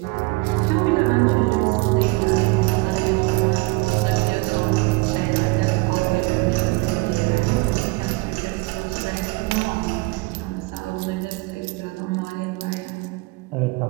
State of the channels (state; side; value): quieter; left; 25.1 dB